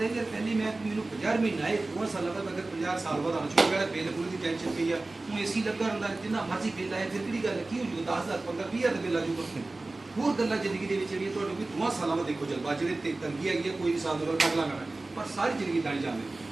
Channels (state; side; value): quieter; left; 3.1 dB